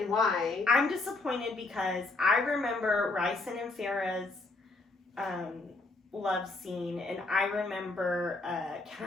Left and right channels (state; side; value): quieter; right; 3.2 dB